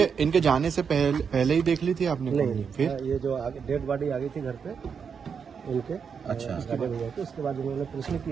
इनके जाने से पहले ही देख ली थी आपने कुंडली? नहीं, फिर ये जो आगे डेड बॉडी आ गई थी घर पे इनके, अच्छा। गार्डन भैया के, उसके बाद उन्होंने प्रश्न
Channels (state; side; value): quieter; left; 6.5 dB